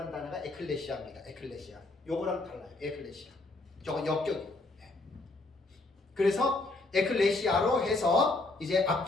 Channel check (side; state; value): right; quieter; 3.1 dB